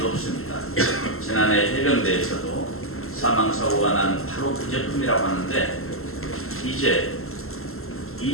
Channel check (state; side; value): late; right; 0.62 ms